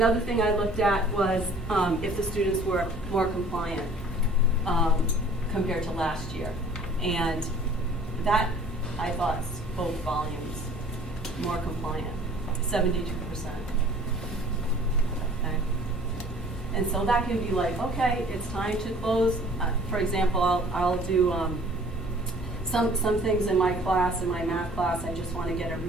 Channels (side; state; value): both; normal; correlation 0.52